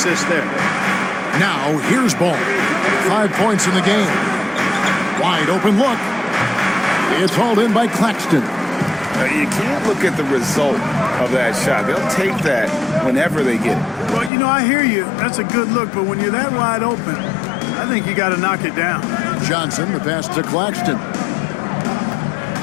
there. Now, here's Ball. 5 points in the game. Wide open look. It's hauled in by Claxton. You can't look at the result of that shot. They'll take that whenever they get it. Well, you know, I hear you. That's a good look, but when you're that wide open, I think you got to knock it down. Johnson, the pass to Claxton.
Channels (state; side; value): drops out; right; at 14.3 s